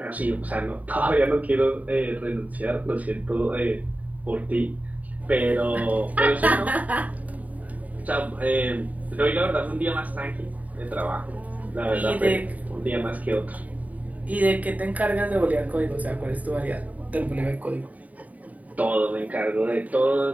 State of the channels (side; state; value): left; late; 0.072 ms